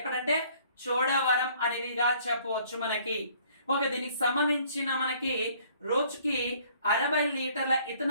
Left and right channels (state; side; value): inverted; both; correlation -0.58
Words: చోడవరం అనేదిగా చెప్పవచ్చు మనకి. ఓకే దీనికి సంబంధించిన మనకి రోజుకి 60 లీటర్ల